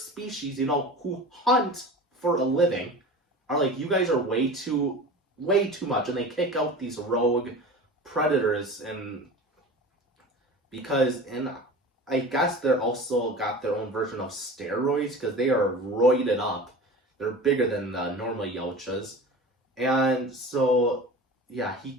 who hunt for a living, are like, you guys are way too much, and they kick out these rogue predators, and because I guess they're also got their own version of steroids because they are roided up. They're bigger than the normal Yautjas. And so, yeah, he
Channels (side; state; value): both; normal; correlation 0.35